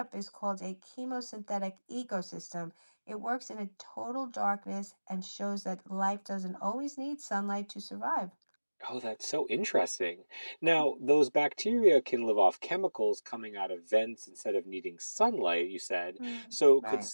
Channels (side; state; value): both; inverted; correlation -1.00